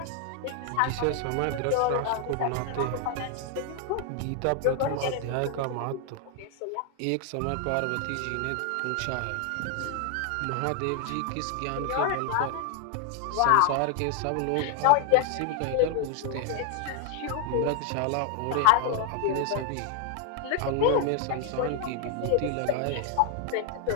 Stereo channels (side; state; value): both; different; correlation 0.01